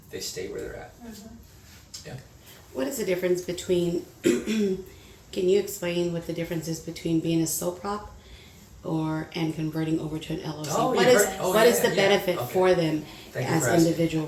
They stay where they're at. Yeah. What is the difference between, can you explain what the difference is between being a sole prop and converting over to an LLC? Oh, What you've is heard- oh, what is yeah, the yeah. benefit Okay. for them Thank you as for asking. individual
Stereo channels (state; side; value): identical; both; correlation 1.00